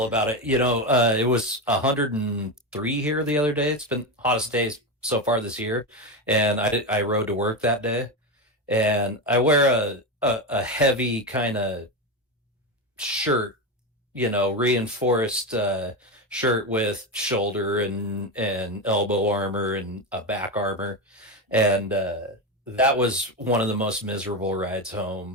about it. It was 103 here the other day. It's been hottest days so far this year, and I rode to work that day, and I wear a heavy kind of shirt, reinforced shirt with shoulder and elbow armor and a back armor, and that was one of the most miserable rides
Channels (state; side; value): normal; both; correlation 0.14